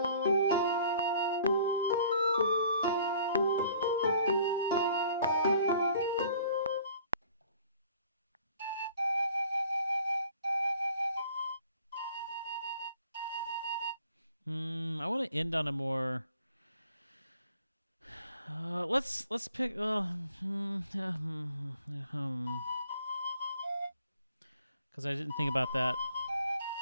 I want to end on a more... let's pick... Because I didn't think about that.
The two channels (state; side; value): inverted; both; correlation -0.55